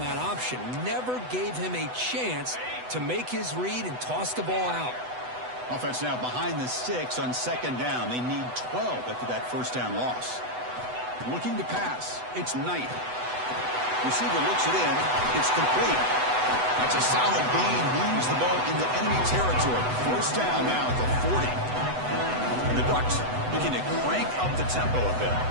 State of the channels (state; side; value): late; left; 8.0 ms